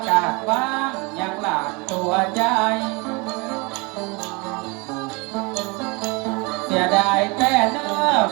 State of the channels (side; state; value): left; quieter; 28.1 dB